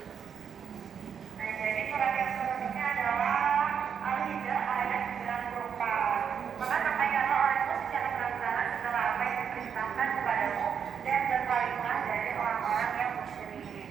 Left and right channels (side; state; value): left; quieter; 7.4 dB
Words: Nah, jadi surat yang selanjutnya adalah Al-Hijr ayat 94. Maka sampaikanlah olehmu secara terang-terangan setelah apa yang diperintahkan kepadamu dan berpalinglah dari orang-orang yang musyrik.